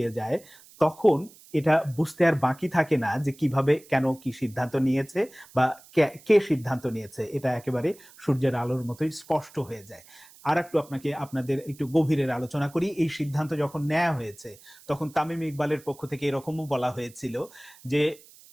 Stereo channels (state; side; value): noise; right; hiss, 23 dB below the sound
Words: যায়, তখন এটা বুঝতে আর বাকি থাকে না যে কিভাবে, কেন, কি সিদ্ধান্ত নিয়েছে বা কে সিদ্ধান্ত নিয়েছে। এটা একেবারে সূর্যের আলোর মতোই স্পষ্ট হয়ে যায়। আর একটু আপনাদের একটু গভীরের আলোচনা করি। এই সিদ্ধান্ত যখন নেওয়া হয়েছে, তখন তামিম ইকবালের পক্ষ থেকে এরকমও বলা হয়েছিল যে